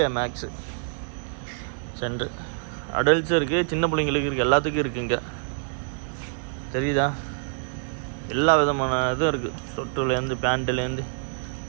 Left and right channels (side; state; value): left; silent; 58 dB below the other